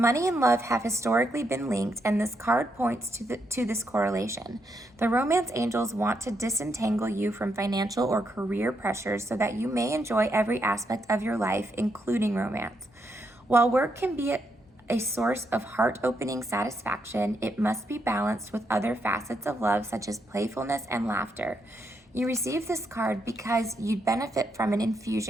and love have historically been linked, and this card points to this correlation. The romance angels want to disentangle you from financial or career pressures so that you may enjoy every aspect of your life, including romance. While work can be a source of heart-opening satisfaction, it must be balanced with other facets of love, such as playfulness and laughter. You receive this card because you'd benefit from an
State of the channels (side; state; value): both; normal; correlation 0.79